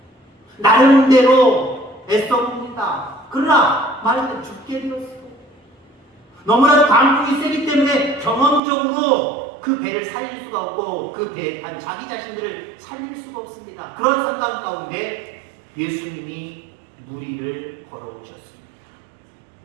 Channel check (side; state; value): left; drops out; at 8.6 s